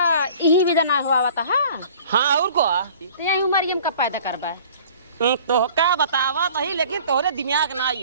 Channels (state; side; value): inverted; both; correlation -0.49